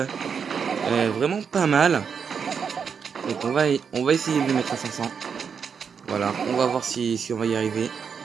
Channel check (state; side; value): quieter; left; 6.5 dB